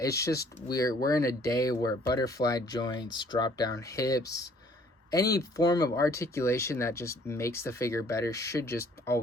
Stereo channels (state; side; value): normal; both; correlation 0.59